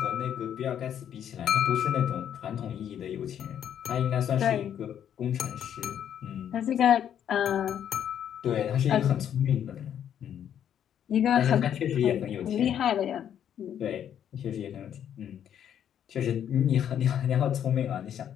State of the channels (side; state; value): right; quieter; 9.5 dB